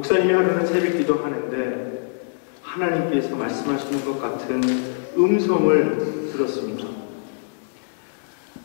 하루는 새벽기도 하는데 하나님께서 말씀하시는 것 같은 음성을 들었습니다.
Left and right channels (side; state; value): right; silent; digital silence